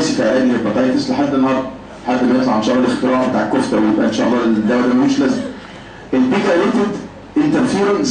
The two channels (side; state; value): both; identical; correlation 1.00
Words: في علاج الهيباتيتس لحد النهارده، لحد ما يطلع ان شاء الله الاختراع بتاع الكفته ويبقى ان شاء الله الدواء ده ملوش لازمه. البيجايليتد انترفيرون